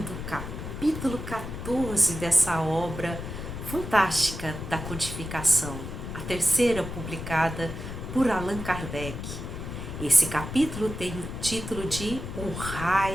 o capítulo 14 dessa obra fantástica da codificação, a terceira publicada por Allan Kardec. Esse capítulo tem o título de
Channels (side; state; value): left; noise; rumble, 8 dB below the sound